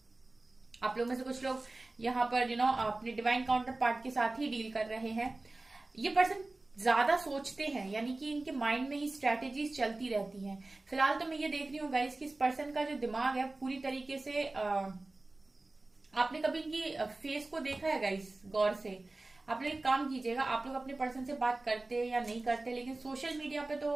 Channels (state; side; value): quieter; left; 3.0 dB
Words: आप लोग में से कुछ लोग यहाँ पर अपने डिवाइन काउंटर पार्ट के साथ ही डील कर रहे हैं। ये पर्सन ज्यादा सोचते हैं, यानी कि इनके माइंड में ही स्ट्रैटेजीज चलती रहती हैं। फिलहाल तो मैं ये देख रही हूँ गाइस कि इस पर्सन का जो दिमाग है पूरी तरीके से आपने कभी इनकी फेस को देखा है गाइस गौर से? आप लोग एक काम कीजिएगा, आप लोग अपने पर्सन से बात करते हैं या नहीं करते, लेकिन सोशल मीडिया पे